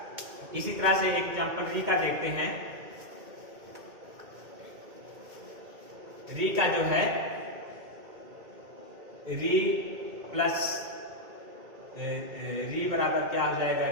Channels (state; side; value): late; left; 2.2 ms